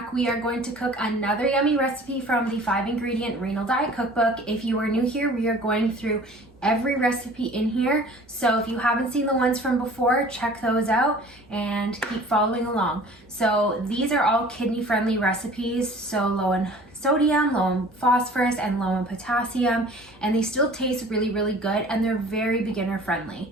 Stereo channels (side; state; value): both; normal; correlation 0.47